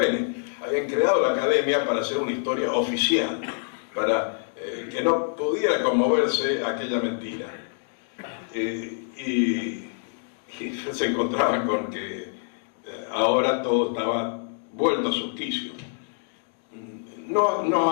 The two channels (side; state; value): right; silent; 59 dB below the other